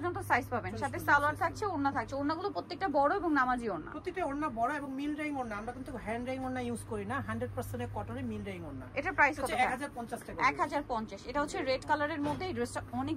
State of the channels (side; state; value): both; identical; correlation 1.00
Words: সাইজ পাবেন, সাথে সালোয়ার থাকছে, ওড়না থাকছে। ওড়নাগুলো প্রত্যেকটা বড় এবং নামাজি ওড়না, প্রত্যেকটা ওড়না বড় এবং মিল রাইং ওড়না। আমরা কিন্তু হ্যান্ড রাইং ওড়না ইউজ করি না, 100% কটনের মিল রাইং ওড়না। এটা প্রাইস কত? 1050 টাকা। 1050। এটা হচ্ছে রেড কালারের মধ্যে। এই ড্রেসটা অনেক